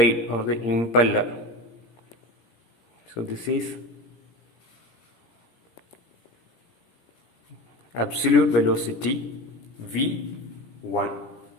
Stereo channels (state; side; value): late; right; 17 ms